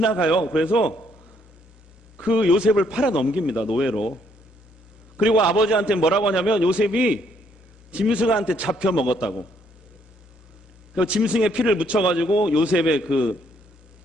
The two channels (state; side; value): normal; both; correlation 0.69